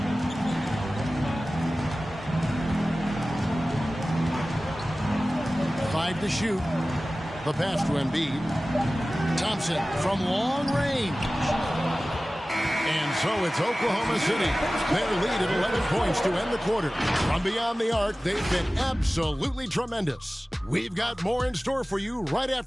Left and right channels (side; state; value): both; normal; correlation 0.97